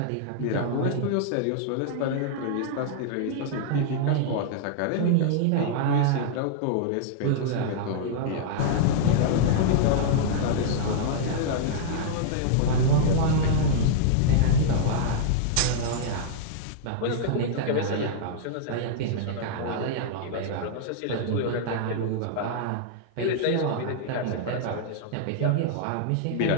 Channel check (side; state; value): both; different; correlation -0.01